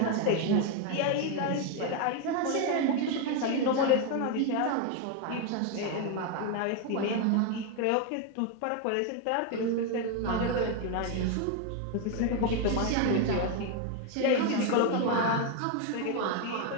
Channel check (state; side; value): different; both; correlation 0.01